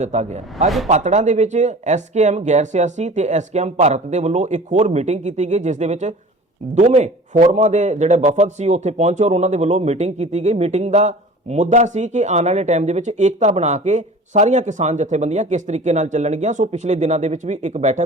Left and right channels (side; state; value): both; normal; correlation 0.41